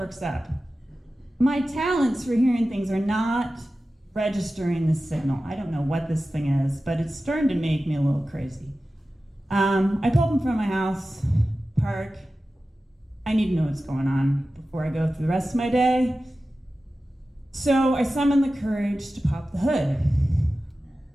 up. My talents for hearing things are not registering the signal. I don't know what this thing is, but it's starting to make me a little crazy. I pull up in front of my house, park. I need to know what's going on before I go through the rest of my day. So I summon the courage to pop the hood.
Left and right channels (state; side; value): normal; both; correlation 0.94